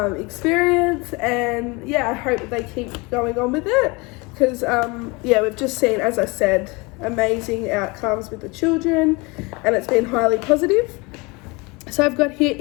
experience, and yeah, I hope that they keep going on with it, because we've just seen, as I said, amazing outcomes with the children, and it's been highly positive. So I've got here,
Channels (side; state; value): right; quieter; 26.3 dB